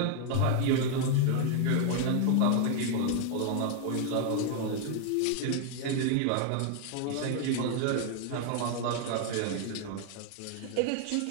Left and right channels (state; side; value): different; both; correlation 0.00